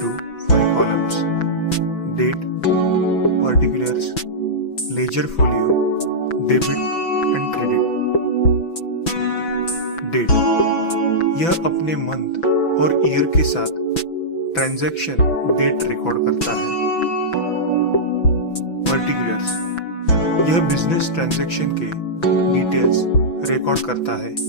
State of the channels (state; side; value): late; right; 6.0 ms